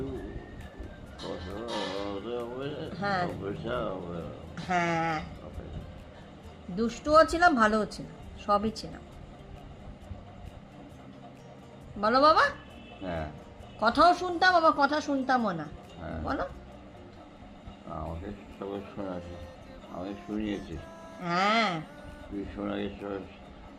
পড়াশোনা হবে হ্যাঁ পয়সা হবে হ্যাঁ, দুষ্টুও ছিলাম ভালোও ছিলাম, সবই ছিলাম। বলো বাবা। হ্যাঁ কথাও শুনতাম আবার কথা শুনতামও না। হ্যাঁ বলো। আমাকে সবাই শোনাছে, আমি শুনিয়েছি। হ্যাঁ তুই শোনাকে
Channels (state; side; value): identical; both; correlation 1.00